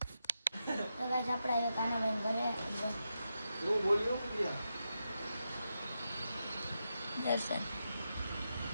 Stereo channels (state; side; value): inverted; both; correlation -0.87